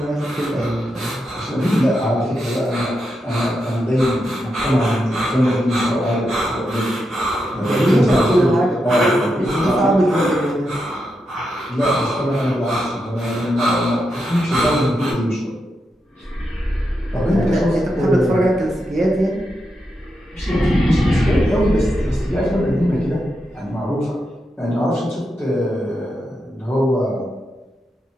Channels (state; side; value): normal; both; correlation 0.85